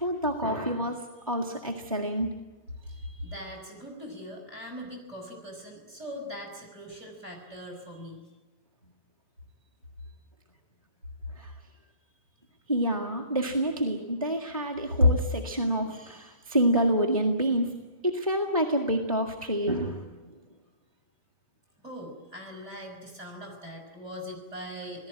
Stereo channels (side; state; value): both; inverted; correlation -0.51